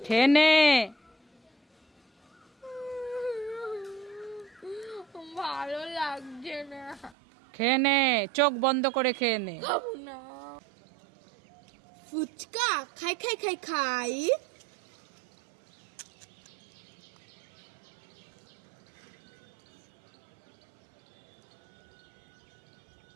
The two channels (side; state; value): left; drops out; at 7.2 s